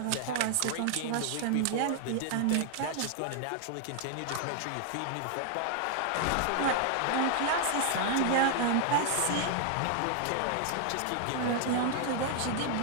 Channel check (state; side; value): different; both; correlation 0.00